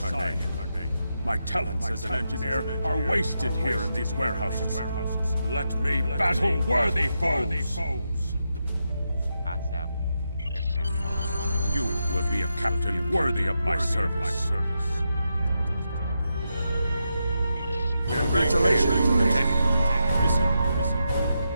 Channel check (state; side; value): inverted; both; correlation -0.85